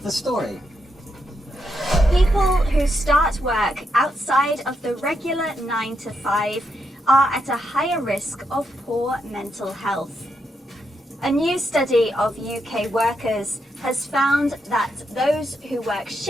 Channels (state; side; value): normal; both; correlation 0.81